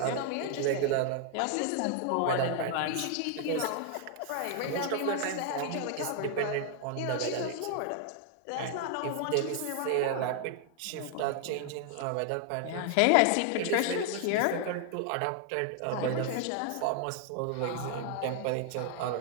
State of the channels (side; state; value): both; different; correlation 0.00